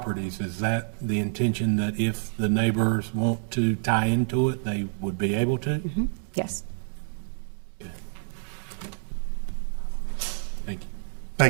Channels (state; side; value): silent; left; digital silence